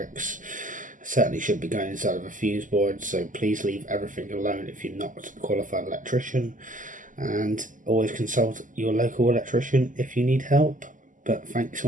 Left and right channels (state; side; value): late; left; 0.38 ms